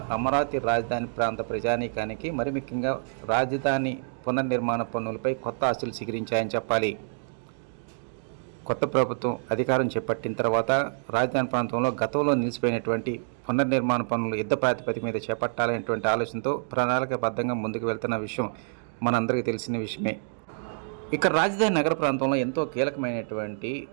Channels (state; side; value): silent; left; digital silence